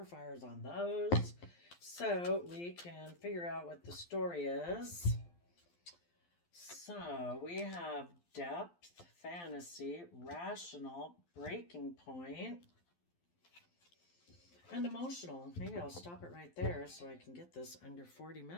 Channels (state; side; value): late; right; 12 ms